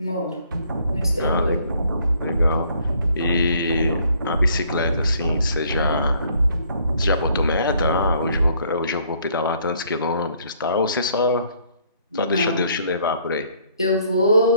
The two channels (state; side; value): inverted; both; correlation -0.63